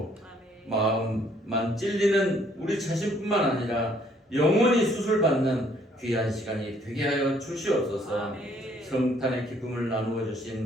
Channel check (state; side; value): normal; both; correlation 0.64